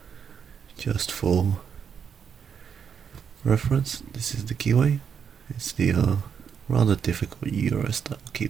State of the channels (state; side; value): quieter; left; 7.2 dB